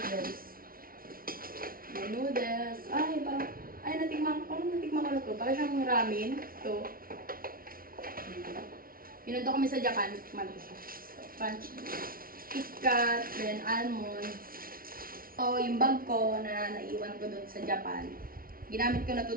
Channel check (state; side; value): late; left; 0.43 ms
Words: Then, noodles. Natikman ko na to. Para siyang ramen. Ito. Pinundo kami sa Japan. Tikman ko siya. Crunchy. KitKat, then almonds. So, yung bag ko na naiwan ko doon sa Japan, ginamit ko na to